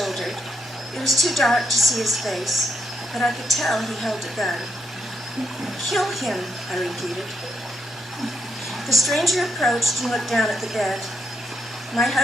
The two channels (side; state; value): both; normal; correlation 0.81